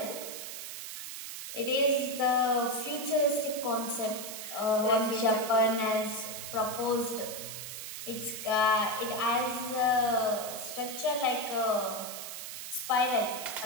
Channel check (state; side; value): noise; right; hiss, 8 dB below the sound